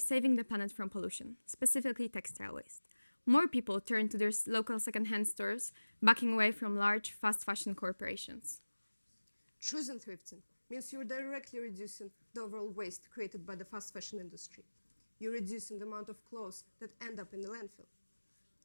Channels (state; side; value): inverted; both; correlation -1.00